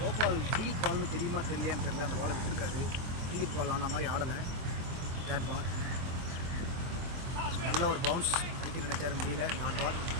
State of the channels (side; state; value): left; late; 23 ms